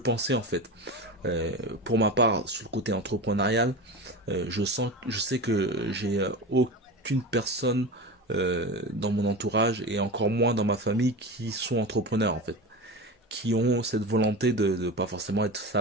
en fait. Pour ma part, sur le côté entrepreneurial, je sais que j'ai aucune personne dans mon entourage et encore moins dans ma famille qui sont entrepreneurs en fait, qui ont cette volonté de pas forcément être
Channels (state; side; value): normal; both; correlation 0.27